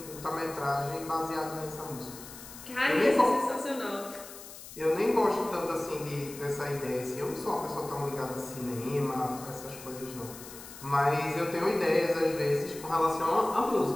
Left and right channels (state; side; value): noise; left; hiss, 15 dB below the sound